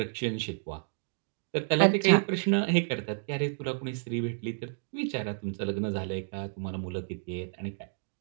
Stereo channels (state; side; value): silent; left; digital silence